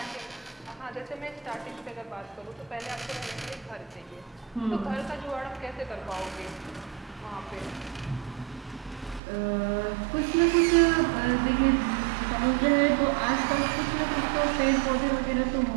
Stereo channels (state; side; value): drops out; left; at 9.2 s